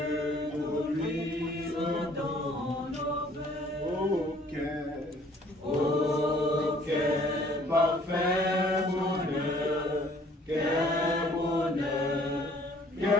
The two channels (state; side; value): normal; both; correlation 0.57